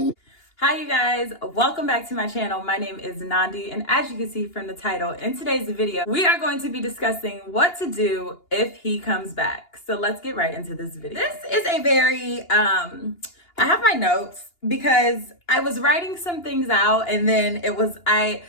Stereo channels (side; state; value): right; late; 2.8 ms